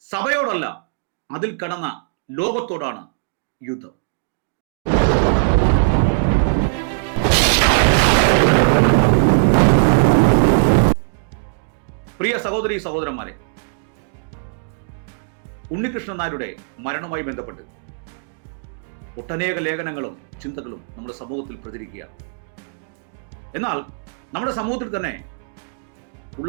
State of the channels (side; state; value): left; silent; digital silence